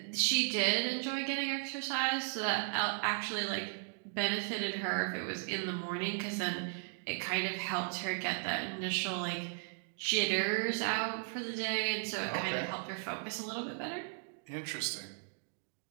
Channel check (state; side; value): silent; left; 54 dB below the other